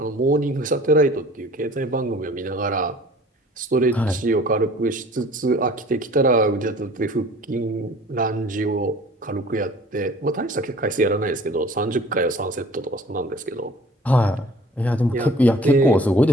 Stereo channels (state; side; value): normal; both; correlation 0.49